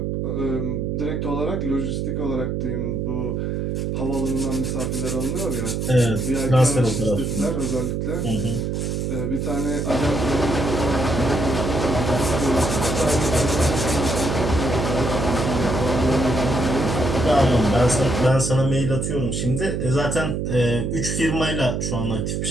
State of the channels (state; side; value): noise; right; hum, 1 dB below the sound